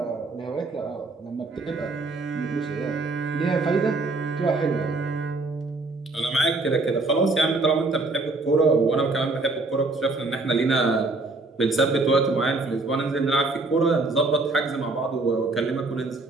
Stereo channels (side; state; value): left; quieter; 3.3 dB